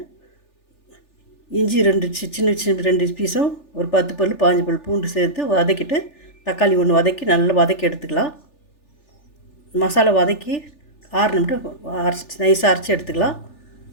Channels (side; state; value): right; late; 3.4 ms